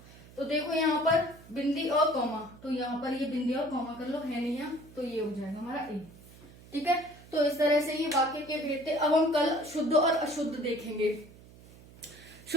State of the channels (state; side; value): noise; right; hum, 21 dB below the sound